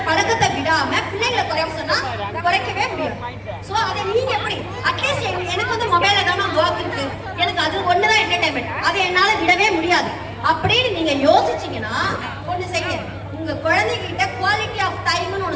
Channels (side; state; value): both; identical; correlation 1.00